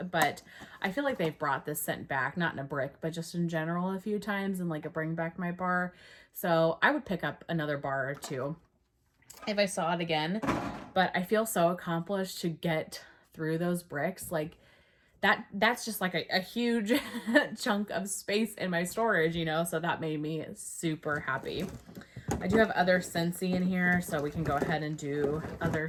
but I feel like they've brought this scent back, not in a brick, but just in general a few times and like a bring back my bar. So I would pick up another bar or two if I saw it again, but I feel so accomplished to get through those bricks. Like that's just like a huge chunk of space in my storage, you know, so that made me super happy. I do have other Scentsy in here, so we can go ahead and do other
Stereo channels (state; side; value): identical; both; correlation 1.00